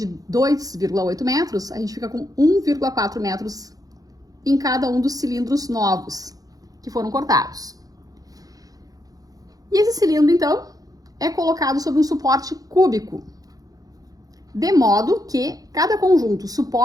2,8 metros, a gente fica com 1,4 metros em cada um dos cilindros novos que foram cortados. E esse cilindro, então, é colocado sobre um suporte cúbico, de modo que cada conjunto,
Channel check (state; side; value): late; left; 0.18 ms